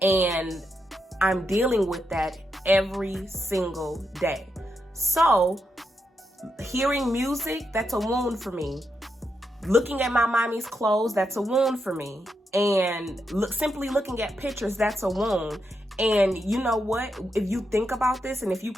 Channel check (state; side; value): normal; both; correlation 0.83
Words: and I'm dealing with that every single day. So hearing music, that's a wound for me. Looking at my mommy's clothes, that's a wound for me. And simply looking at pictures, that's a wound. And you know what? If you think about this and if you